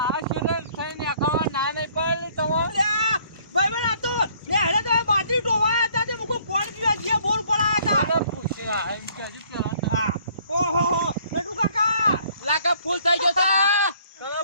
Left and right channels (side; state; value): both; inverted; correlation -0.61